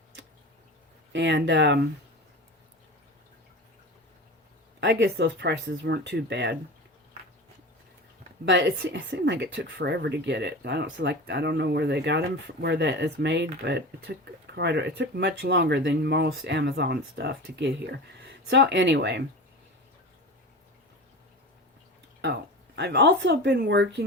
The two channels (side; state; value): both; normal; correlation 0.30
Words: And I guess those prices weren't too bad. But it seemed like it took forever to get it. I don't know where they got them, where that is made, but it took much longer than most Amazon stuff to get here. So anyway, I've also been